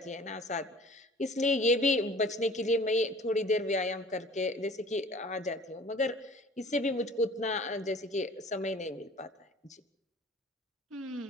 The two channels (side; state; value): both; normal; correlation 0.47